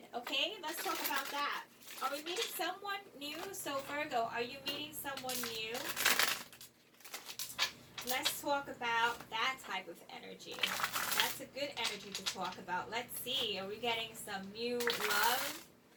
okay? Let's talk about that. Are we meeting someone new? So Virgo, are you meeting someone new? Let's talk about that type of energy. That's a good energy to talk about. Let's see, are we getting some new love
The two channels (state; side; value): identical; both; correlation 1.00